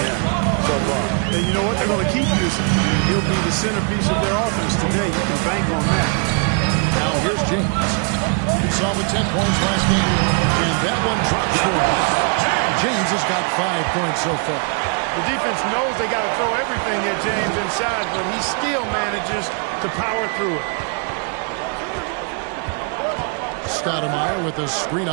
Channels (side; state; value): left; quieter; 39.5 dB